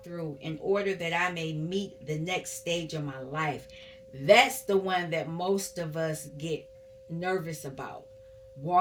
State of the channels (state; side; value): identical; both; correlation 1.00